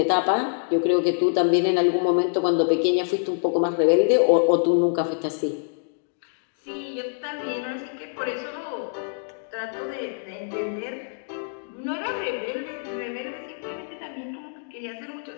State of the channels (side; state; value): right; silent; digital silence